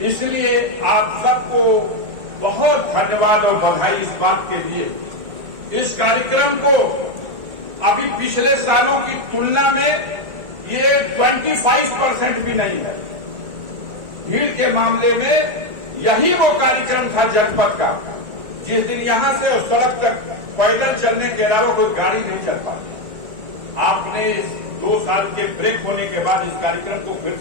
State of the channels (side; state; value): left; late; 1.8 ms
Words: इसलिए आप सबको बहुत धन्यवाद और बधाई इस बात के लिए। इस कार्यक्रम को अभी पिछले सालों की तुलना में ये 25% भी नहीं है। भीड़ के मामले में यही वो कार्यक्रम था जनपद का जिस दिन यहां से उस सड़क तक पैदल चलने के अलावा कोई गाड़ी नहीं चल पाती। आपने 2 साल के ब्रेक होने के बाद इस कार्यक्रम को फिर